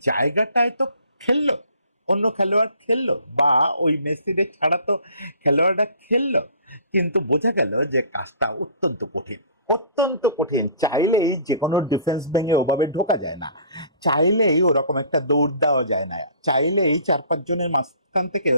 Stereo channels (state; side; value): inverted; both; correlation -0.51